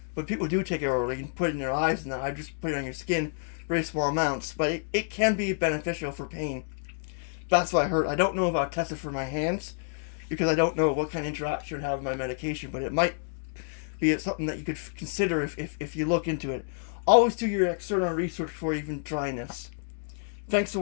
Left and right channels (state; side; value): silent; right; digital silence